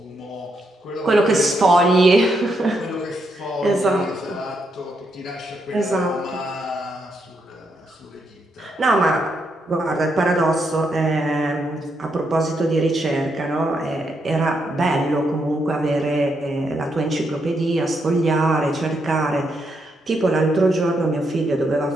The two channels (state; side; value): normal; both; correlation 0.79